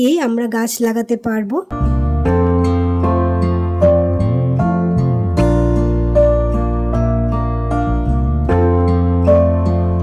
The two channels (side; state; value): both; identical; correlation 1.00